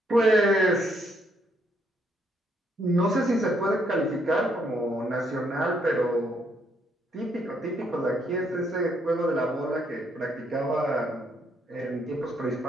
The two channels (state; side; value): normal; both; correlation 0.72